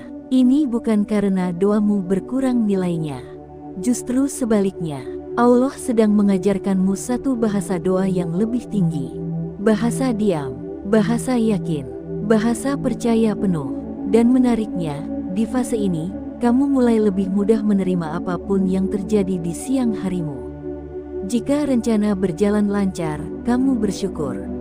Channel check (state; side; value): identical; both; correlation 1.00